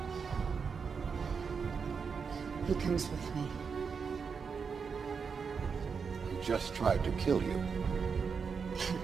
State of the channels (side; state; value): left; quieter; 5.8 dB